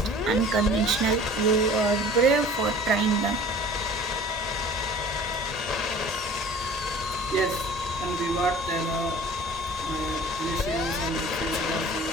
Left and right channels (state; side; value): normal; both; correlation 0.46